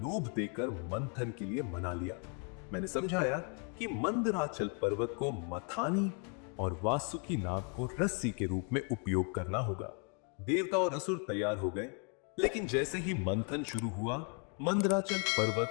देकर मंथन के लिए मना लिया। मैंने समझाया कि मंदराचल पर्वत को मथानी और वासुकी नाग को रस्सी के रूप में उपयोग करना होगा। देवता और असुर तैयार हो गए, लेकिन जैसे ही मंथन शुरू हुआ, मंदराचल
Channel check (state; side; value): quieter; right; 38.7 dB